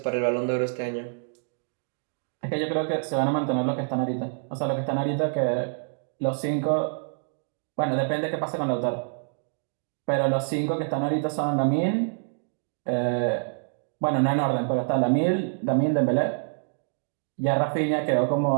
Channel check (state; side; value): silent; left; digital silence